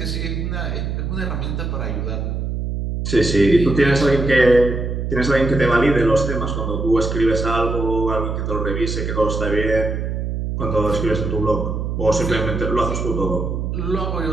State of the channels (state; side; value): noise; right; hum, 3 dB below the sound